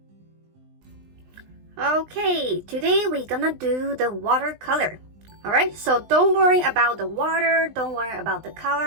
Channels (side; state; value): left; late; 20 ms